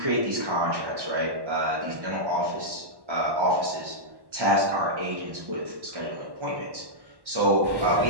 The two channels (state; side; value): late; left; 1.1 ms